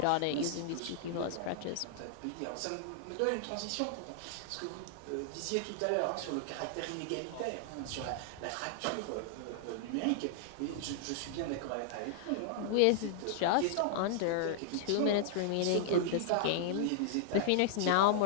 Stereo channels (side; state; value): both; different; correlation -0.01